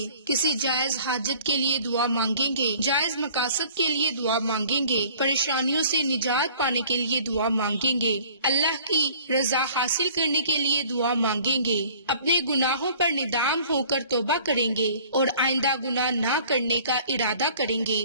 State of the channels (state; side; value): inverted; both; correlation -0.51